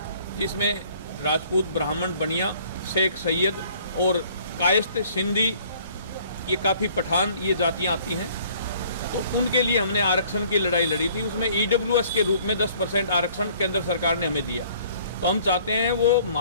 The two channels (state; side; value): inverted; both; correlation -0.57